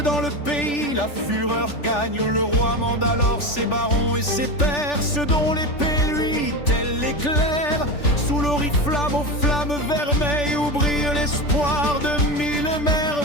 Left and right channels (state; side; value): late; right; 3.4 ms